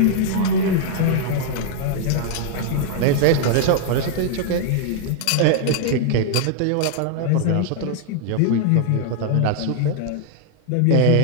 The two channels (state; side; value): different; both; correlation 0.00